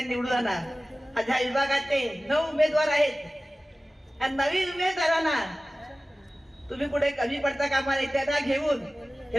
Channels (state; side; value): normal; both; correlation 0.97